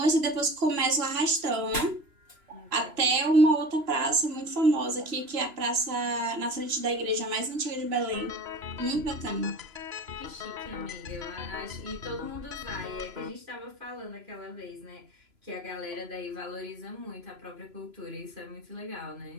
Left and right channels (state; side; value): late; left; 3.0 ms